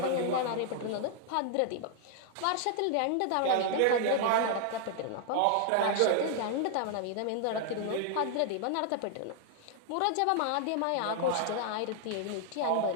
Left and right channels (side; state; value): both; different; correlation 0.00